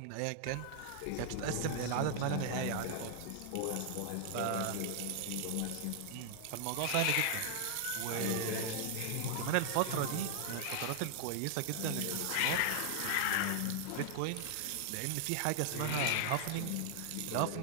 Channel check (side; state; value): both; different; correlation 0.00